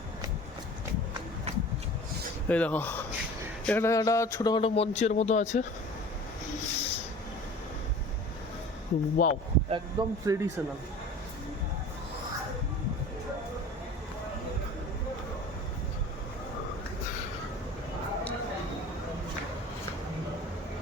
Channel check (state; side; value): normal; both; correlation 0.41